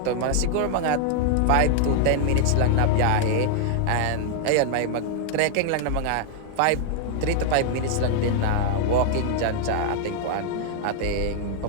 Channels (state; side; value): different; both; correlation 0.00